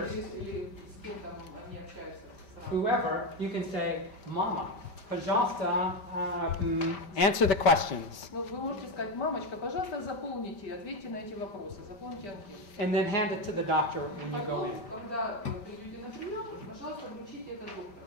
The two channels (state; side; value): late; right; 5.1 ms